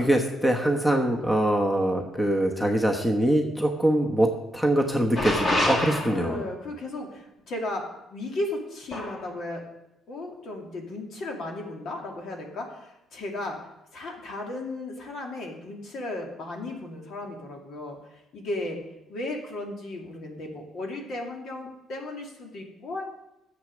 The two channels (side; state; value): both; normal; correlation 0.82